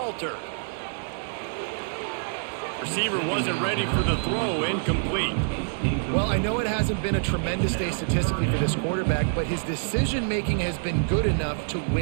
Receiver wasn't ready for the throw. Incomplete. Well, I know it hasn't been a tremendous day statistically for this quarterback, but his decision-making has been good enough to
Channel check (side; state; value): left; silent; digital silence